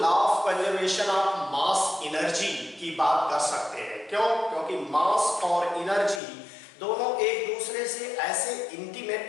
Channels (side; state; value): right; drops out; at 6.2 s